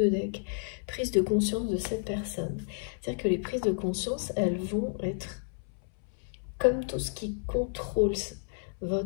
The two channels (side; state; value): right; silent; 57 dB below the other